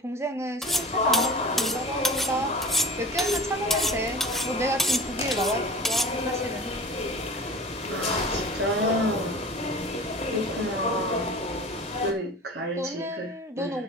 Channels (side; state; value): both; normal; correlation 0.38